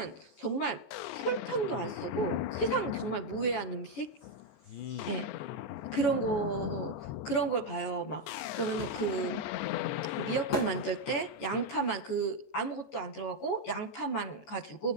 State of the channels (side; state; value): right; late; 14 ms